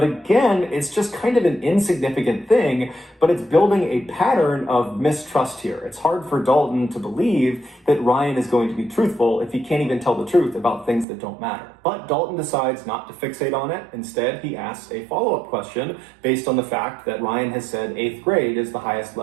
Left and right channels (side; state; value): left; drops out; at 11.1 s